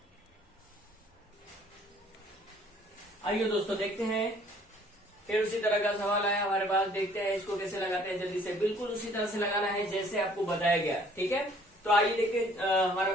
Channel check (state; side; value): normal; both; correlation 0.58